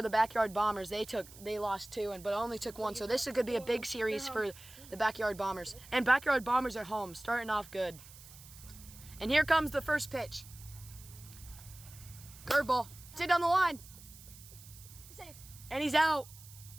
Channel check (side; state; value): right; noise; hiss, 19 dB below the sound